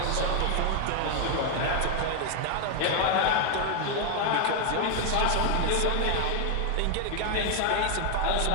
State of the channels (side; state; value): both; different; correlation 0.01